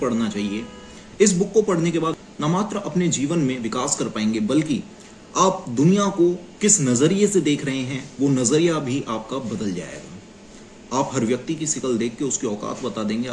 पढ़ना चाहिए। इस बुक को पढ़ने के बाद न मात्र अपने जीवन में विकास कर पाएंगे, बल्कि आप दुनिया को किस नजरिए से देख रहे हैं वो नजरिया भी आपका बदल जाएगा। आप हर व्यक्ति की शिकल देख के उसकी औकात बता देंगे।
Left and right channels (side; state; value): both; identical; correlation 1.00